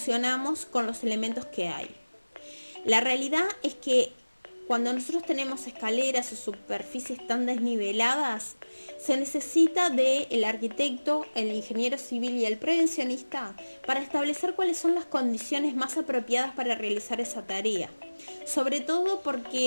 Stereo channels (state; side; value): inverted; both; correlation -1.00